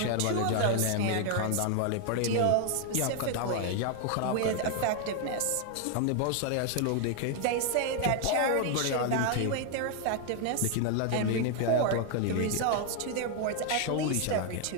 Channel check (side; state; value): both; different; correlation 0.00